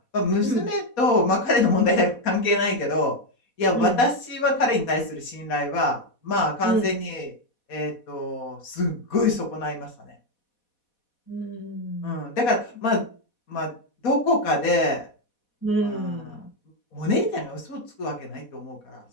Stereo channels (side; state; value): right; late; 4.1 ms